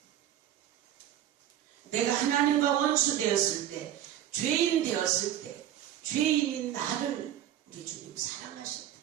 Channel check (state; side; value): quieter; left; 11.4 dB